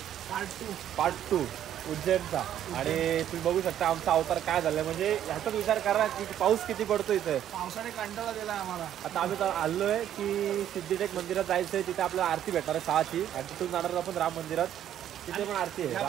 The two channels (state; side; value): quieter; left; 10.9 dB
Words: पार्ट 2 उज्जैनचा। आणि तुम्ही बघू शकता आमचा अवतार काय झालाय, म्हणजे ह्याचाच विचार करा की पाऊस किती पडतो इथे। पावसाने कंटाळा दिला आम्हाला। आता आम्ही आलोय की सिद्धिटेक मंदिरात जायचंय, तिथे आपल्याला आरती भेटणार आहे 6ची आणि तिथून जाणार आपण राम मंदिरात, तिथे पण आरती आहे।